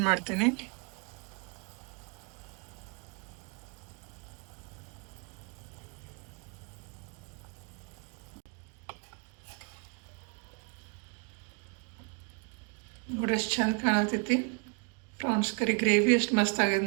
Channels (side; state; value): left; quieter; 36.3 dB